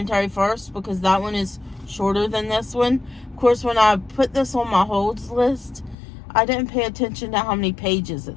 first, because that one is shorter than this one. Of course, when I put this on my holds list, I didn't pay attention to how many pages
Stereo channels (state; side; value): drops out; right; at 6.0 s